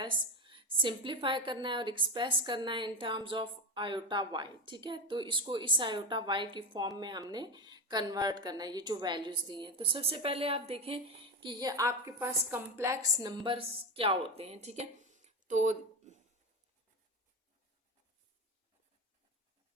सिंप्लीफाई करना है और एक्सप्रेस करना है in terms of iota Y. ठीक है, तो इसको इस आयोटा वाई की फॉर्म में हमने कन्वर्ट करना है, ये जो वैल्यूज दी हैं। तो सबसे पहले आप देखें कि ये आपके पास कम्प्लेक्स नंबर्स क्या होते हैं। ठीक है, तो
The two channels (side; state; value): both; normal; correlation 0.19